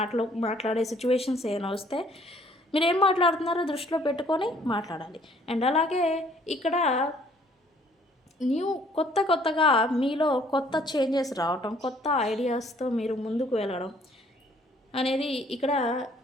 మాట్లాడే సిచ్యువేషన్స్ ఏమైనా వస్తే మీరేం మాట్లాడుతున్నారో దృష్టిలో పెట్టుకొని మాట్లాడాలి. అండ్ అలాగే ఇక్కడ కొత్తగా మీలో కొత్త చేంజెస్ రావటం, కొత్త ఐడియాస్‌తో మీరు ముందుకు వెళ్ళడం అనేది ఇక్కడ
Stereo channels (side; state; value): both; normal; correlation 0.60